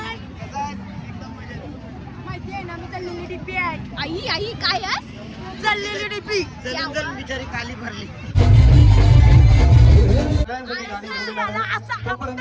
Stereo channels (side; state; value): both; identical; correlation 1.00